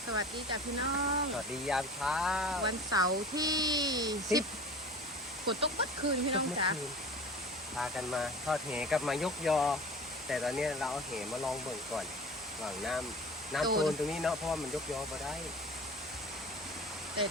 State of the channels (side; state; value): both; normal; correlation 0.39